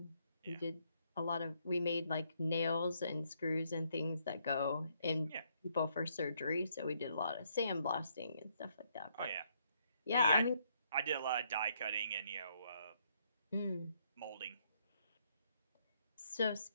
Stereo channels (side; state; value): both; inverted; correlation -0.73